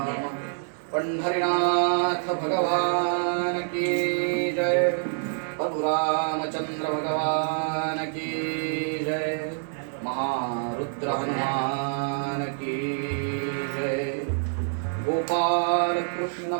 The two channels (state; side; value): silent; left; digital silence